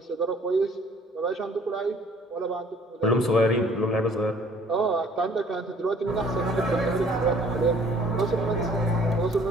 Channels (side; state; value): both; normal; correlation 0.57